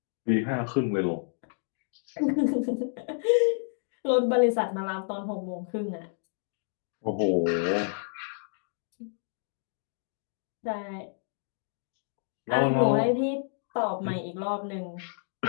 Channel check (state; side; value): silent; right; digital silence